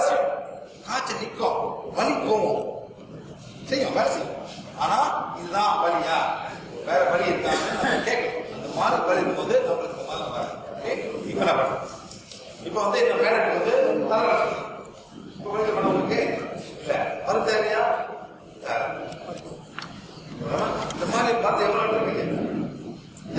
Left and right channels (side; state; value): both; identical; correlation 1.00